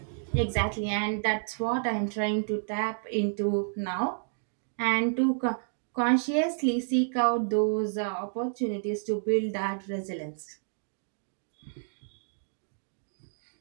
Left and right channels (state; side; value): silent; left; digital silence